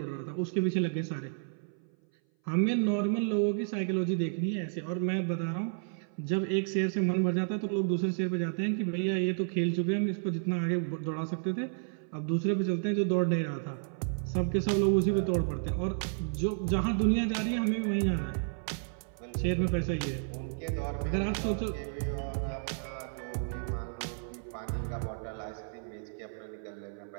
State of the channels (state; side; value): silent; left; 57 dB below the other